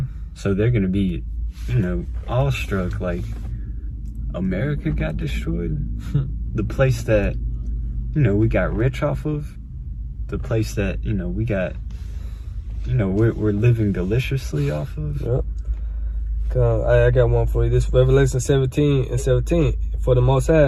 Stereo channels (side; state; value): both; identical; correlation 1.00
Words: So they're going to be, you know, awestruck, like, America got destroyed? The place that, you know, we got rich off of, the place that, you know, we got, you know, we're living deliciously off of. Yep. I got one for you. This Revelation 17:17. "For the Most